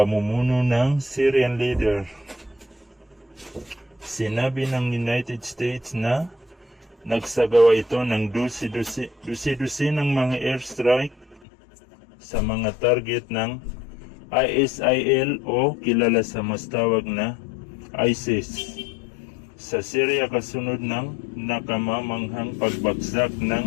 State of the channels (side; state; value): right; drops out; at 11.4 s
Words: ng Syrian leader. Sinabi ng United States na nagsagawa ito ng dusi-dusi ng mga airstrike sa mga target ng ISIL o kilala sa mas tawag na ISIS sa Syria kasunod ng nakamamanghang pagbagsak